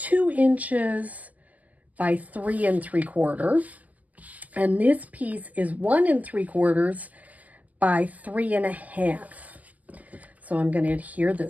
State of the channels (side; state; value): left; late; 0.078 ms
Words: inches by 3 3/4. And this piece is 1 3/4 by 3 1/2. So I'm going to adhere